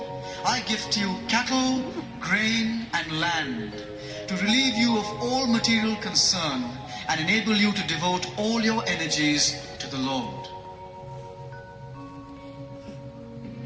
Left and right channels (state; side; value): identical; both; correlation 1.00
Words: I gift you cattle, grain, and land to relieve you of all material concern and enable you to devote all your energies to the Lord.